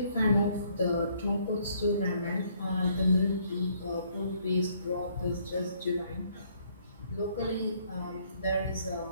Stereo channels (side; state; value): both; inverted; correlation -0.67